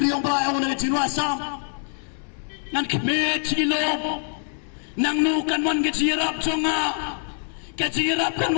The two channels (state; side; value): silent; right; 62 dB below the other